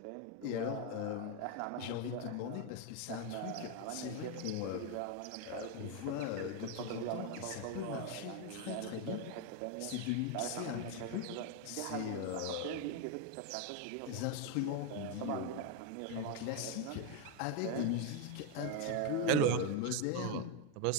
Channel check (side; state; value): both; different; correlation 0.02